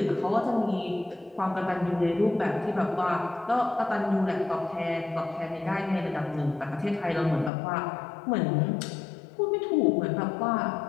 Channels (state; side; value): drops out; right; at 7.5 s